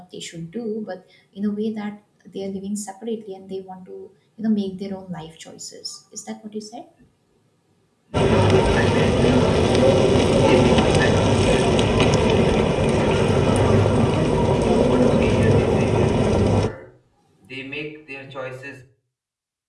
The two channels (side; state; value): both; identical; correlation 1.00